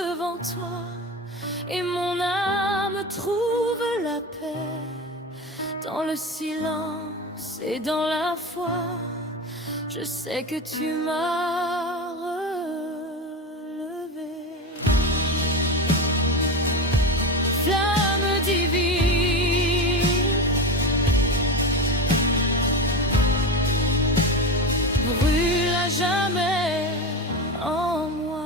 toi et mon âme trouve la paix dans le silence et dans la foi. Je sais que tu m'as relevé. Flamme divine, brûle à jamais en moi.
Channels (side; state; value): both; normal; correlation 0.22